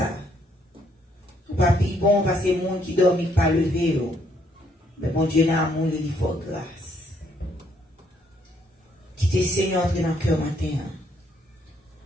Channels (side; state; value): both; normal; correlation 0.70